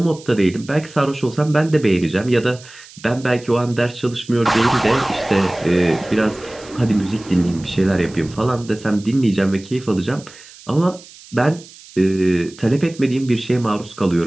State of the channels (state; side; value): noise; right; hiss, 21 dB below the sound